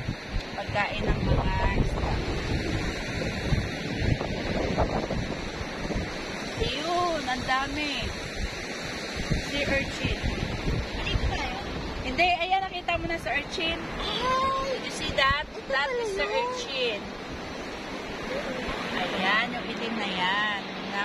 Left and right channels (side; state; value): both; identical; correlation 1.00